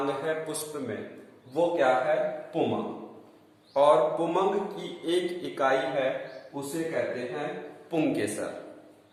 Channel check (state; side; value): identical; both; correlation 1.00